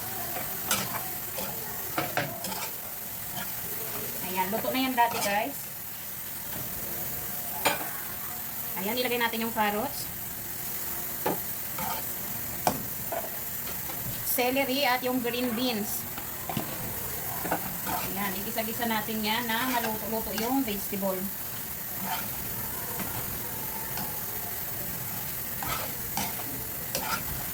Ayan, luto na yan dati guys. Ayan, ilagay natin yung carrots, celery at yung green beans. Ayan, igisa-gisa natin yan na maluto-luto yung vegetable.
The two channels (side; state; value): both; identical; correlation 1.00